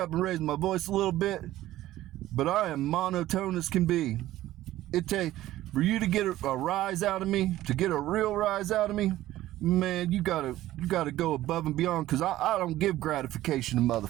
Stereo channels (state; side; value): quieter; left; 14.9 dB